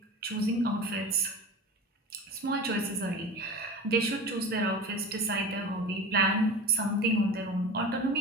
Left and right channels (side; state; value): both; normal; correlation 0.32